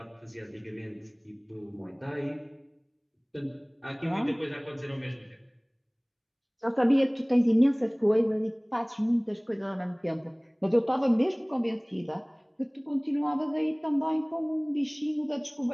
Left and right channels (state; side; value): identical; both; correlation 1.00